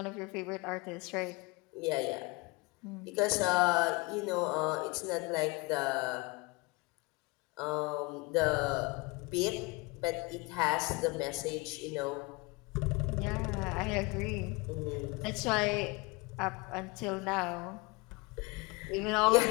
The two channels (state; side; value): quieter; right; 25.8 dB